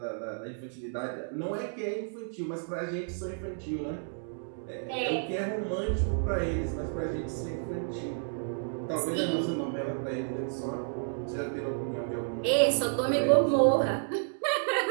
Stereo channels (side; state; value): left; silent; digital silence